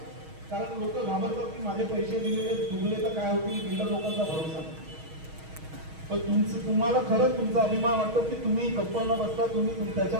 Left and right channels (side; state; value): left; late; 6.3 ms